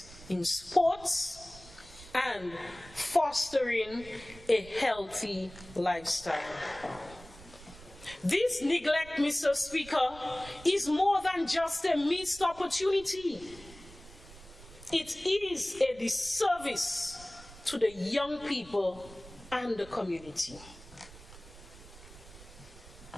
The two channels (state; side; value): noise; right; rumble, 19 dB below the sound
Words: in sports and fostering a healthy lifestyle. This neglect, Mr. Speaker, is more than just a missed opportunity. It is a disservice to the young people and the community.